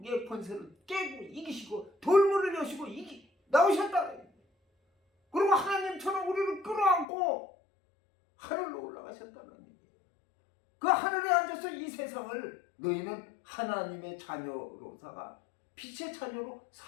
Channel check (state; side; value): drops out; right; at 7.1 s